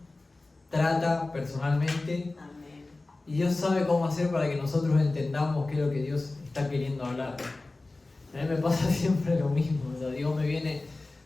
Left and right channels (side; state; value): right; quieter; 3.2 dB